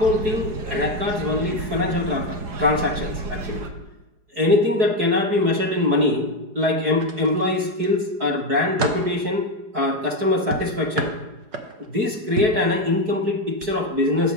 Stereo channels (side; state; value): left; late; 4.8 ms